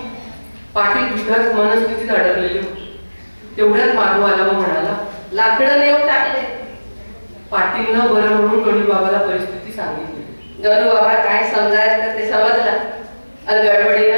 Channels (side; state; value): both; inverted; correlation -1.00